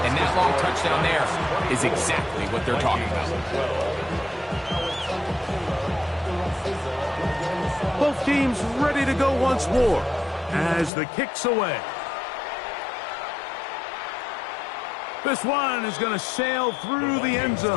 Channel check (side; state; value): right; drops out; at 10.9 s